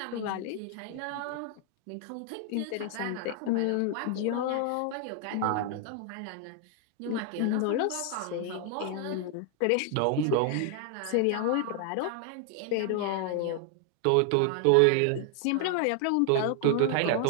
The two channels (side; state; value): both; different; correlation 0.00